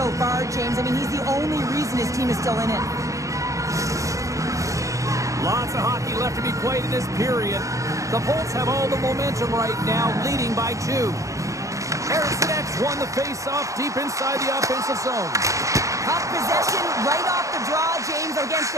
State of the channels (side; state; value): left; late; 0.15 ms